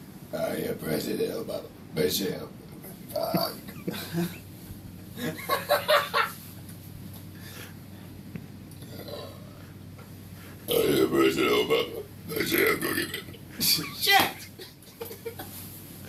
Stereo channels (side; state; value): both; identical; correlation 1.00